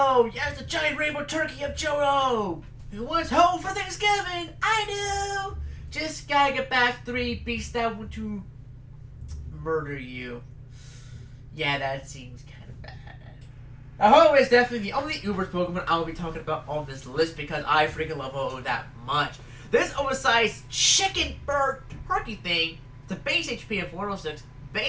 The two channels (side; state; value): both; identical; correlation 1.00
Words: Yes, the giant rainbow turkey of Johto! Who wants home for Thanksgiving? I do! Just gotta get back 3 beasts that want to murder you. Yeah, that seems kind of bad. Ho-Oh is definitely the only Uber Pokemon I will be talking about on this list because I freaking love Ho-Oh that much. This oversized chicken bird turkey thing, the base HP of 106,